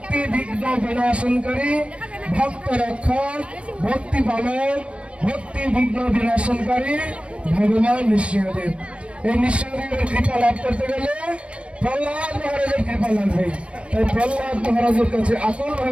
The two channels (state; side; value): late; left; 0.061 ms